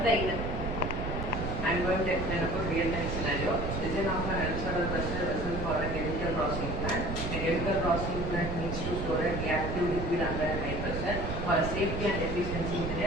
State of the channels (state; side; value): noise; right; rumble, 4 dB below the sound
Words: very well. I am going to explain about real-time scenario. Design of an ellipsoidal pressure vessel for a chemical processing plant. A chemical processing plant needs to store a reactive liquid under a high pressure. For safety and efficiency